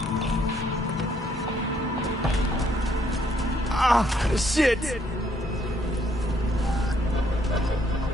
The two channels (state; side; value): normal; both; correlation 0.69